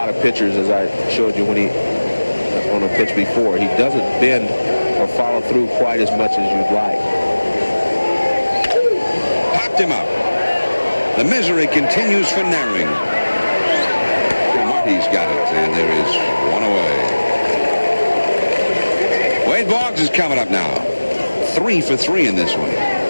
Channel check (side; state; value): both; inverted; correlation -1.00